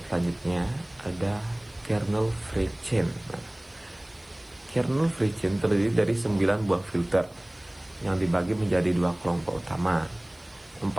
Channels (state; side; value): noise; right; hiss, 30 dB below the sound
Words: selanjutnya ada kernel FreeChain. Nah, kernel FreeChain terdiri dari 9 buah filter yang dibagi menjadi 2 kelompok utama. 4